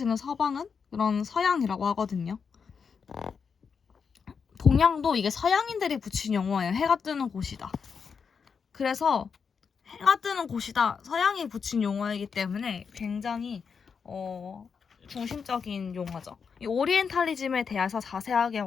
서방은 그런 서양이라고 하거든요. 동양도 이게 서양인들이 붙인 용어예요. 해가 뜨는 곳이다. 그래서 해가 뜨는 곳이다. 서양이 붙인 용어이기 때문에 굉장히 중심적인 용어죠. 이 오리엔탈리즘에 대해서 자세하게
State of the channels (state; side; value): quieter; right; 6.0 dB